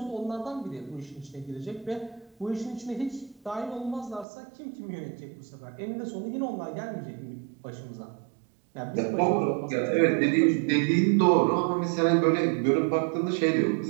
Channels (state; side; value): drops out; left; at 4.2 s